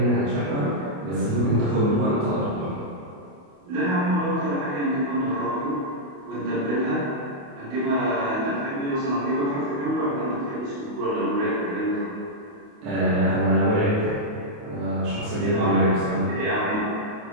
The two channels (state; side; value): late; left; 28 ms